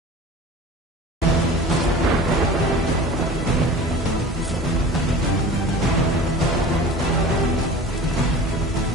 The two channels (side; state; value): both; normal; correlation 0.39